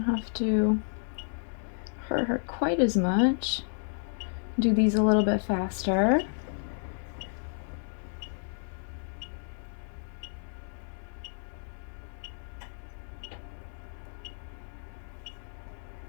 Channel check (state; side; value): silent; right; digital silence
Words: have to hurt her quite as much. Do these a little bit faster.